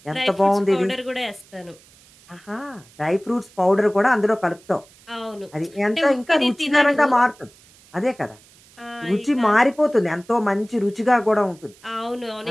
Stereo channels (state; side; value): noise; right; hiss, 27 dB below the sound